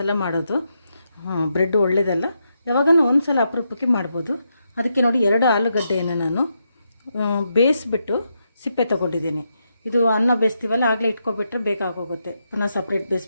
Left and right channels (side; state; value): both; inverted; correlation -0.82